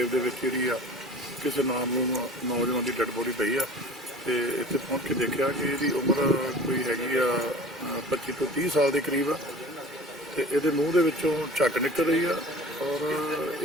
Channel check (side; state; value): both; normal; correlation 0.42